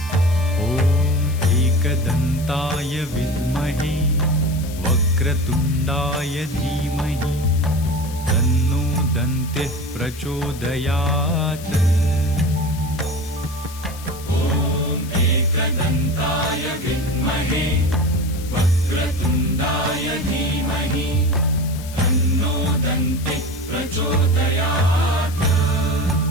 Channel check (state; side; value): noise; left; hiss, 16 dB below the sound